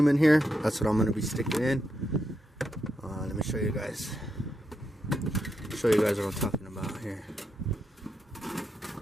in here. That's what I'm going to be sticking in. Let me show you guys. What I'm talking about here.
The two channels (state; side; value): normal; both; correlation 0.83